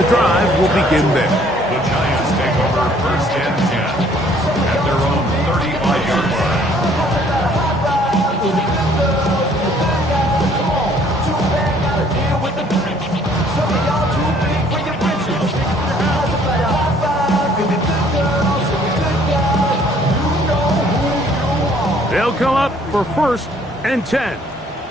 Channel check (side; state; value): both; normal; correlation 0.60